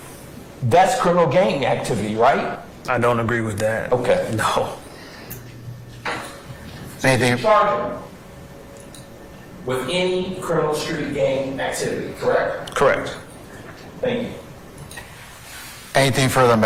that's criminal gang activity, right? I don't agree with that. Okay. No. Anything? Charge him with any criminal street gang activity, correct? Correct. Thank you. Anything further on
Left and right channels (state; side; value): identical; both; correlation 1.00